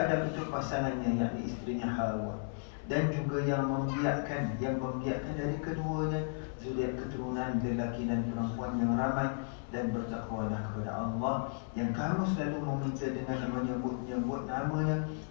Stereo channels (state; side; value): silent; right; 55 dB below the other